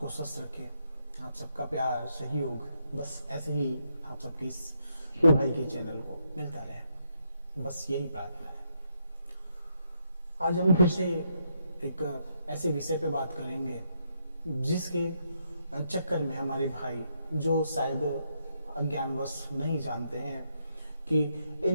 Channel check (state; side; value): inverted; both; correlation -0.78